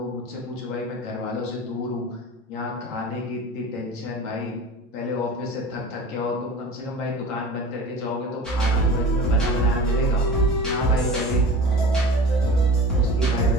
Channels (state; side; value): normal; both; correlation 0.37